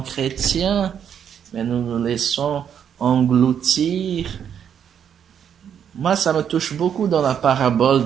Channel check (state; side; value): quieter; left; 8.5 dB